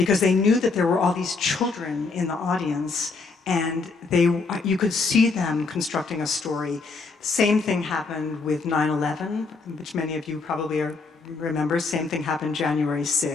they knew that there were all these children in the audience and you could see them constructing a story. Same thing happened with 9/11, which many of you probably remember. Same thing happened January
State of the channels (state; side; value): quieter; right; 4.2 dB